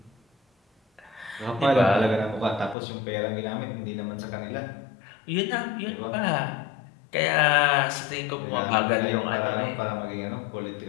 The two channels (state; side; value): drops out; right; at 2.8 s